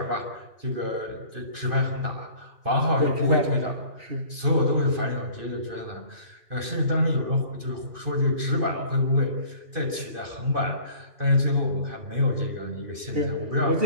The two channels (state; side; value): late; left; 2.6 ms